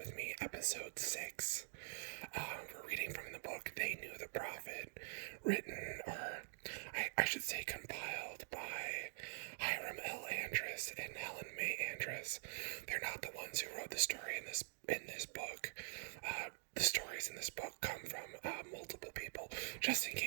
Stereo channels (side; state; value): left; silent; digital silence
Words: Me, Episode 6. We're reading from the book They Knew the Prophet, written, or I should say compiled by Hiram L. Andrus and Helen May Andrus. They're not the ones who wrote the story in this book. The stories in this book come from multiple people, just in